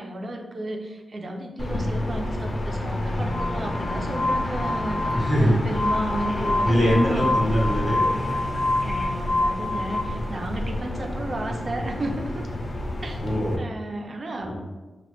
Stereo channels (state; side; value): normal; both; correlation 0.92